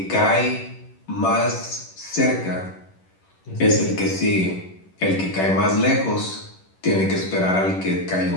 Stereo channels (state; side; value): late; right; 11 ms